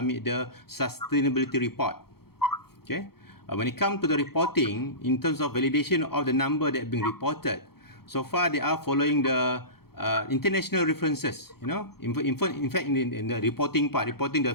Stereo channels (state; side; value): late; right; 0.95 ms